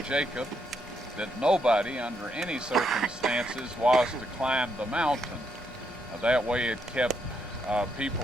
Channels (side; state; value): both; normal; correlation 0.77